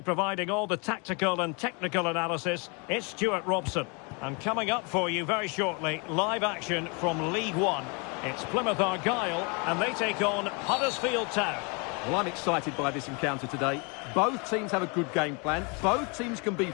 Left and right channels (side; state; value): right; quieter; 32.4 dB